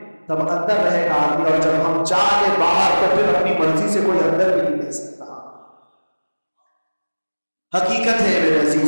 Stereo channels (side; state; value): both; inverted; correlation -1.00